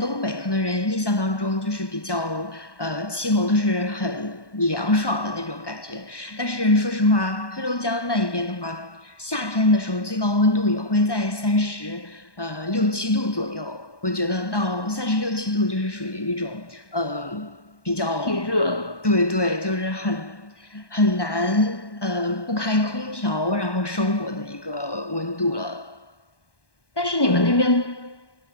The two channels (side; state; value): right; late; 1.2 ms